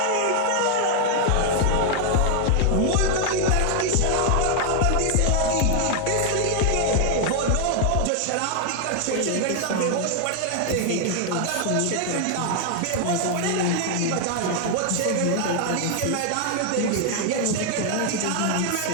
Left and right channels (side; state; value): both; different; correlation 0.00